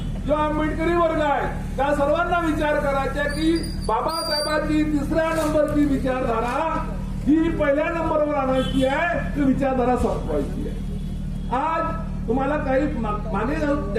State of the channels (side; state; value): both; identical; correlation 1.00